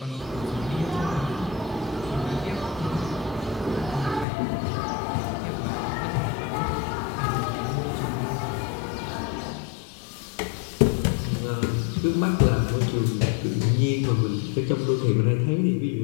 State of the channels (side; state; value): right; drops out; at 4.2 s